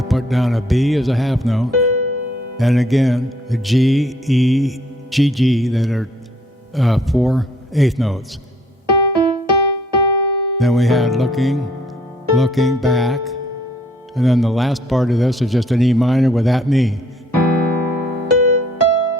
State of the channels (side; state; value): both; normal; correlation 0.62